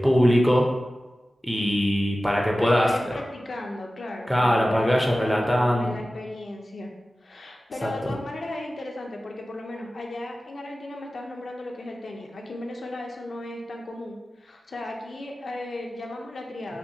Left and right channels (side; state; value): both; normal; correlation 0.95